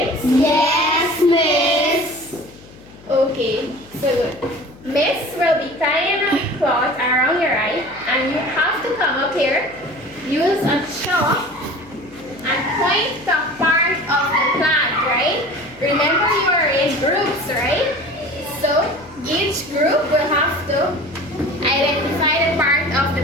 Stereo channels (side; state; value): left; noise; hum, 23 dB below the sound